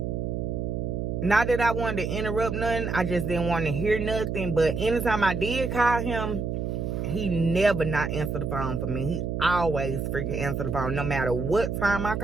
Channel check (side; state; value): right; noise; hum, 2 dB below the sound